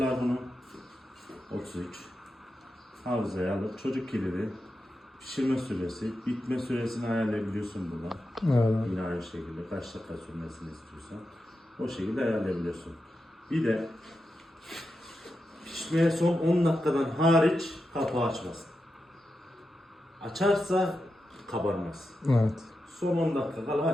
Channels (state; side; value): normal; both; correlation 0.89